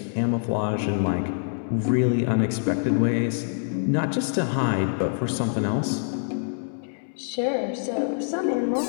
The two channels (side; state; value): right; silent; digital silence